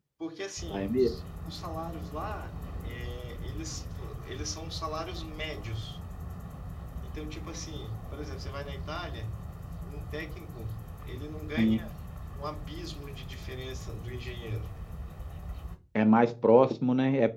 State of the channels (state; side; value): identical; both; correlation 1.00